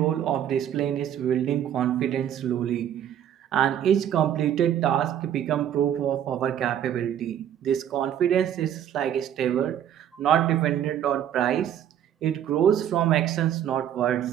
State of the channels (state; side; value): quieter; left; 10.2 dB